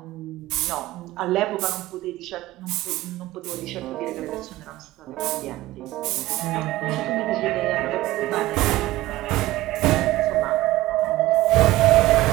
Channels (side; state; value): left; quieter; 17.1 dB